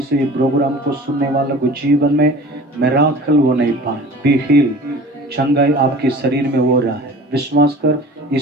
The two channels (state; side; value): normal; both; correlation 0.42